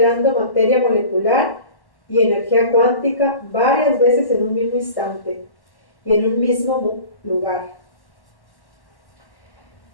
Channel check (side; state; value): right; late; 1.1 ms